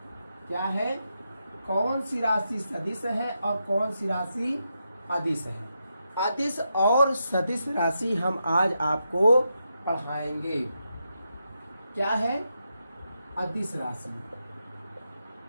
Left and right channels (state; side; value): inverted; both; correlation -0.85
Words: क्या है? कौन सी राशि सदिश है और कौन सी राशि अदिश है। अदिश और सदिश राशि हम आज आपको पढ़ाएंगे। क्या है? अदिश राशि,